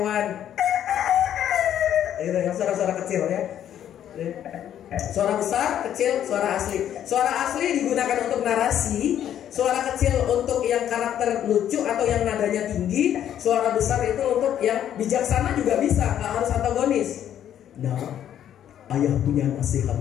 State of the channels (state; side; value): quieter; right; 10.4 dB